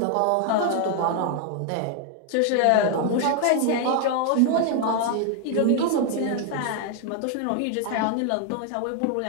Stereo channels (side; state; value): both; different; correlation 0.00